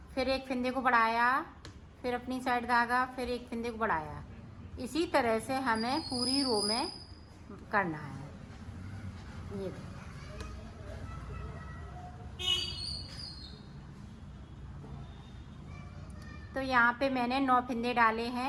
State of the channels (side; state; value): both; identical; correlation 1.00